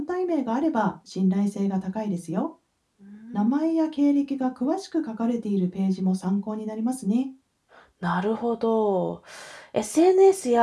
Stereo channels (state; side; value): identical; both; correlation 1.00